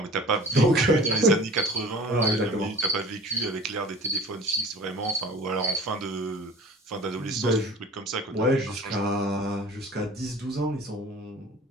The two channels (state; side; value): normal; both; correlation 0.43